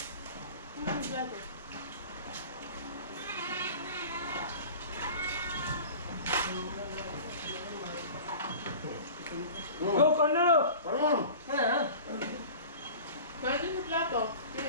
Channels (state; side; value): inverted; both; correlation -0.40